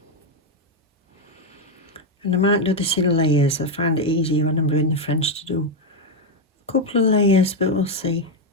And I might do this in layers. I find it easier when I'm doing the French to do a couple of layers, but we'll see.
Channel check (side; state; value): both; normal; correlation 0.04